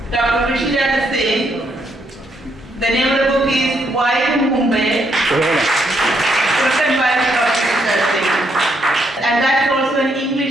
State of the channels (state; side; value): normal; both; correlation 0.75